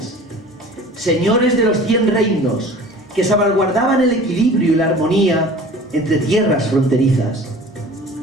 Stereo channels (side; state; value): both; normal; correlation 0.43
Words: señores de los 100 reinos que salvaguardaban el equilibrio y la armonía entre tierras fronterizas.